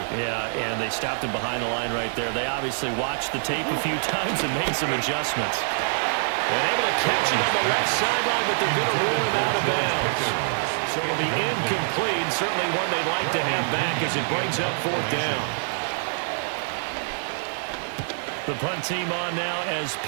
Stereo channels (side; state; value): left; silent; digital silence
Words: Yeah, and they stopped him behind the line right there. They obviously watched the tape a few times and made some adjustments. And able to catch it on the left sideline, but they're going to rule him out of bounds. So it'll be incomplete, certainly one they'd like to have back as it brings up 4th down. The punt team on now as